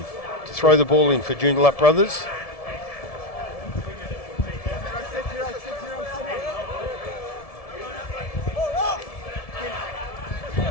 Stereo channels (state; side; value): late; right; 1.7 ms